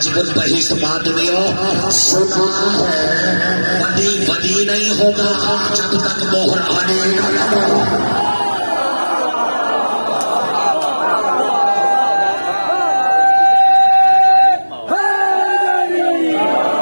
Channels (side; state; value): both; inverted; correlation -1.00